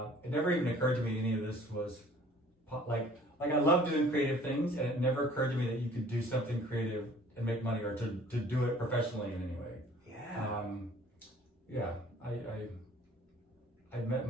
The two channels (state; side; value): normal; both; correlation 0.53